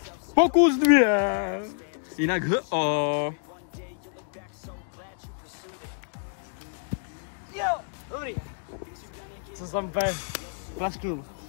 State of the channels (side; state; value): right; silent; digital silence